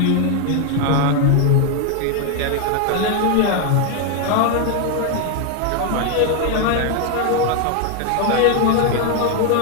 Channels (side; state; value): both; different; correlation 0.01